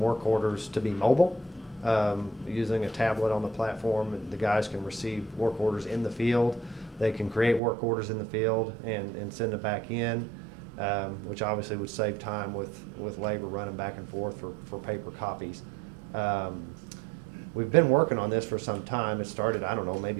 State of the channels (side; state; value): left; drops out; at 7.6 s